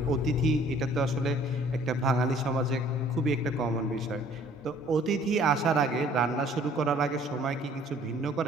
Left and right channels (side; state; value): both; normal; correlation 0.56